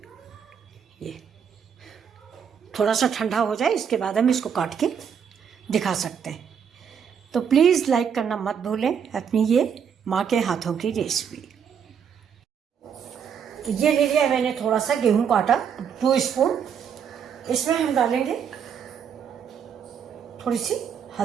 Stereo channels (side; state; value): left; quieter; 7.5 dB